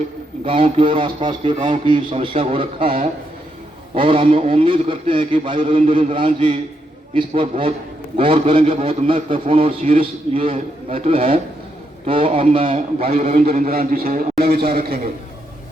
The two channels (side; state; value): both; normal; correlation 0.80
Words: गांव की और आसपास के गांव की समस्या को रखा है और हम उम्मीद करते हैं कि भाई रविंद्र इंद्राज जी इस पर बहुत गौर करेंगे। बहुत महत्वपूर्ण और सीरियस ये मैटर है, तो अब मैं भाई रविंद्र इंद्राज जी से अपना विचार रखेंगे।